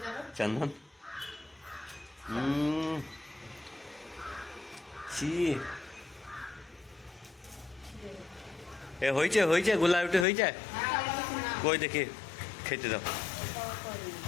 চন্দন ছি এ হয়েছে গোলা রুটি হয়েছে কই দেখি খেতে দাও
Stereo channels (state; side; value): drops out; right; at 10.2 s